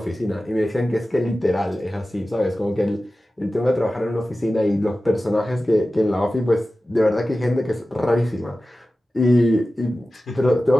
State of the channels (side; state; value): both; normal; correlation 0.95